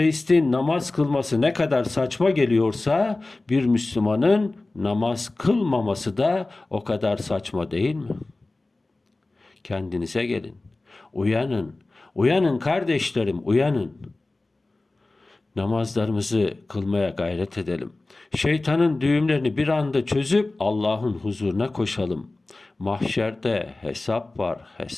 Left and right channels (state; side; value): quieter; right; 3.1 dB